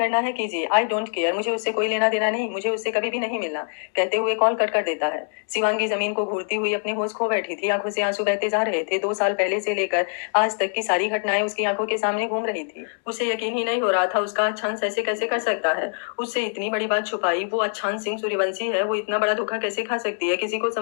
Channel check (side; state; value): right; silent; digital silence